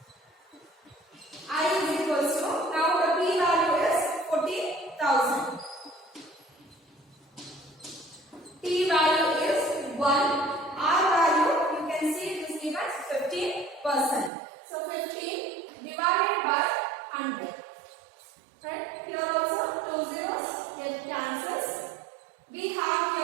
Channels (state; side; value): drops out; left; at 14.3 s